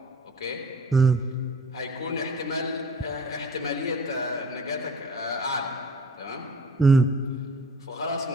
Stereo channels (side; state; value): both; normal; correlation 0.46